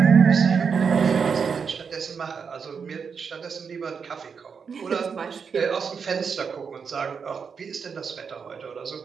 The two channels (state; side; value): quieter; left; 6.1 dB